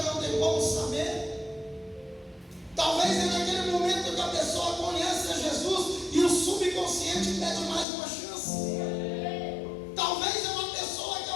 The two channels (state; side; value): drops out; right; at 7.9 s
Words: não tem como saber. Talvez é naquele momento que a pessoa conhece a Jesus e o subconsciente pede mais uma chance. Talvez é uma pessoa que